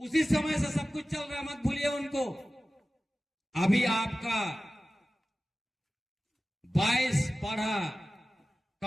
समय से सब कुछ चल रहा, मत भूलिए उनको। अभी आपका 22 पढ़ा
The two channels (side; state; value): both; normal; correlation 0.96